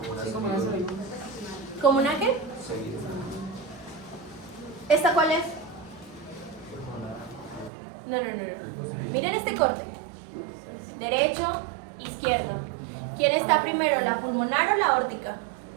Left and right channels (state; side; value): drops out; left; at 7.7 s